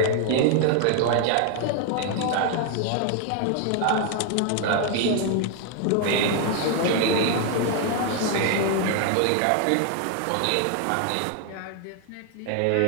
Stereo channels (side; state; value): both; different; correlation 0.00